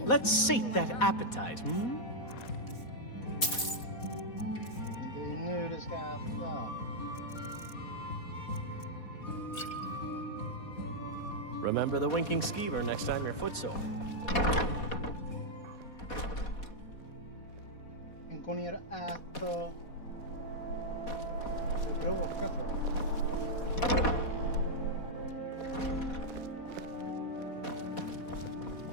Let's sate that appetite, hmm? Det är nu det ska äta. Remember the Winking Skeever next time you're footsore. Gå ner och äta. Du bråkar för.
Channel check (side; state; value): right; late; 4.1 ms